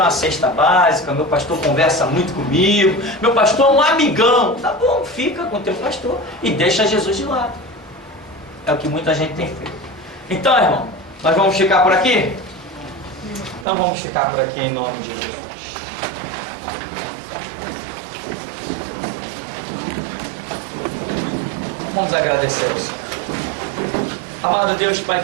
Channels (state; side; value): drops out; left; at 13.7 s